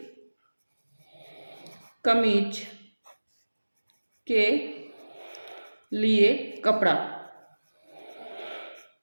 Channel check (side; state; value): both; inverted; correlation -1.00